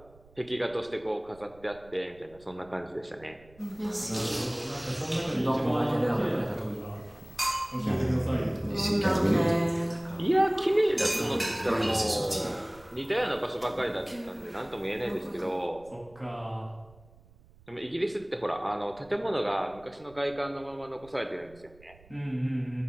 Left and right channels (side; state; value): right; noise; rumble, 25 dB below the sound